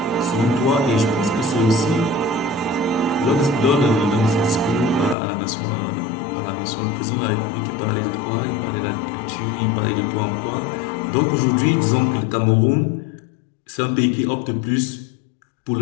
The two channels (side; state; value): right; drops out; at 5.2 s